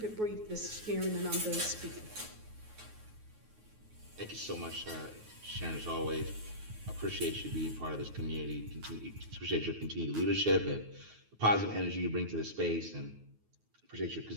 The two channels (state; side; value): late; left; 9.4 ms